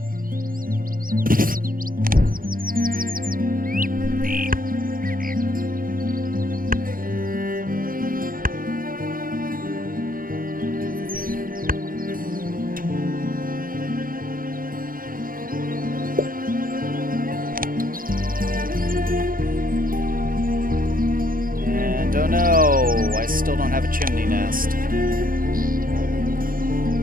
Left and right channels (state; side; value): late; left; 0.41 ms